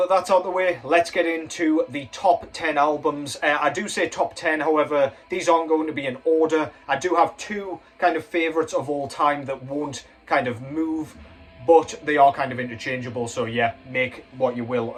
that's out of the way, let's get into the top 10 albums. I do say top 10, however, these aren't going to be in order. I do have two kind of favourites of all time that won't kind of move, but they are kind of interchangeable, so yeah, make what you will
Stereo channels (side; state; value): both; identical; correlation 1.00